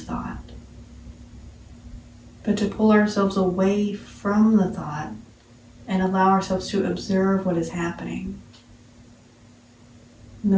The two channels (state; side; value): identical; both; correlation 1.00